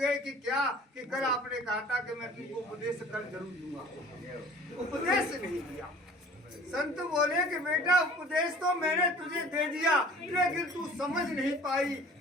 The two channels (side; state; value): both; normal; correlation 0.47